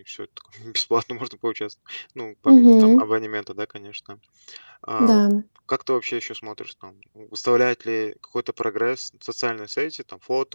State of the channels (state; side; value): inverted; both; correlation -1.00